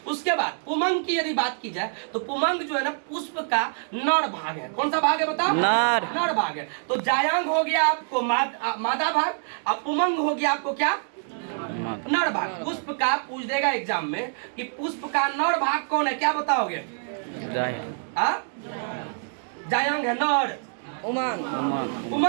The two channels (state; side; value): silent; left; digital silence